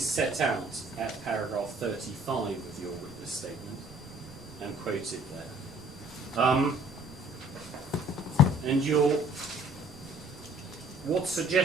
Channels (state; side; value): normal; both; correlation 0.55